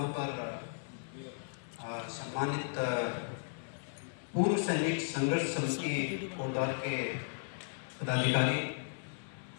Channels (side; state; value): right; silent; 54 dB below the other